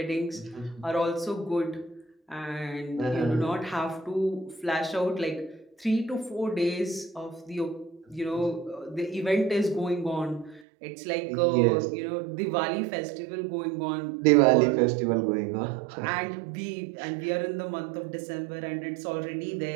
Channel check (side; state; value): left; drops out; at 10.7 s